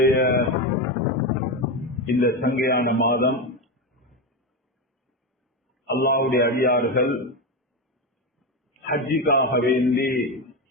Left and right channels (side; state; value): both; normal; correlation 0.14